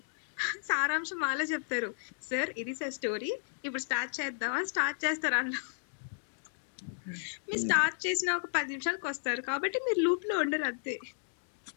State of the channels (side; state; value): right; silent; digital silence